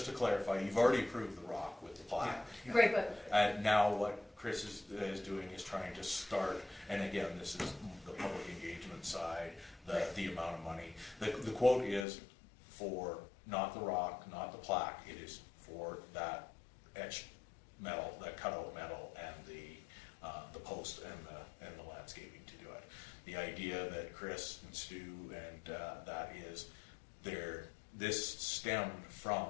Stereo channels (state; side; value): drops out; right; at 12.1 s